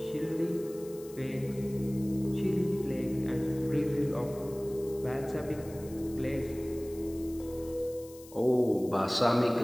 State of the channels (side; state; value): left; noise; hiss, 20 dB below the sound